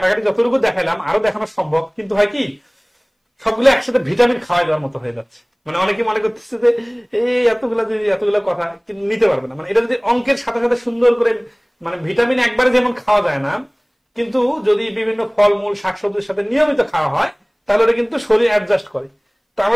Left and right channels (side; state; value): both; identical; correlation 1.00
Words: যতটুকু দেখাইলাম আরো দেখানো সম্ভব, কিন্তু হয় কি সবগুলো একসাথে ভিটামিন খাওয়াই দেওয়ার মতো হয়ে যাচ্ছে। মানে অনেকে মনে করতেছে যে এই এতগুলা কথা কিন্তু নিতে পারবে না। মানে এটা যদি অঙ্কের সাথে সাথে সুন্দর করে মানে ভিটামিন একবারে যেমন খাওয়া যায় না, কিন্তু যদি বিভিন্ন ফলমূল শাকসবজির সাথে নিয়মিত খাওয়া হয় তাহলে ওটা কিন্তু শরীর অ্যাডজাস্ট করে। তো